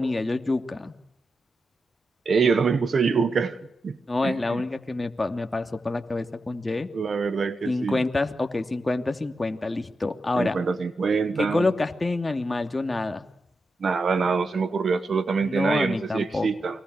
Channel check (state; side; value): normal; both; correlation 0.87